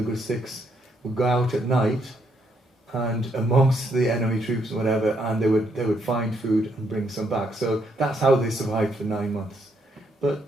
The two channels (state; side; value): normal; both; correlation 0.74